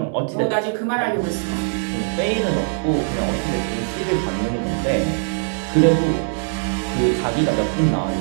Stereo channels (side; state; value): left; silent; 65 dB below the other